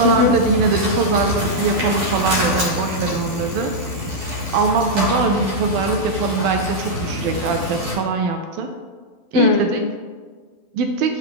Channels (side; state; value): left; late; 12 ms